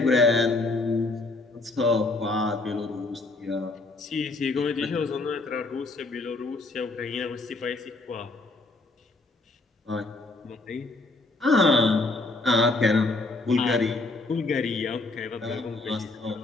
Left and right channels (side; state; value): right; quieter; 3.2 dB